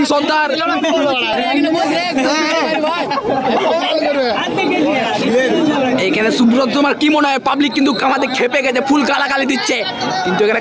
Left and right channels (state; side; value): identical; both; correlation 1.00